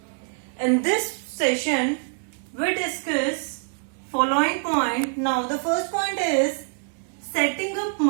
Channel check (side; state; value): left; silent; 62 dB below the other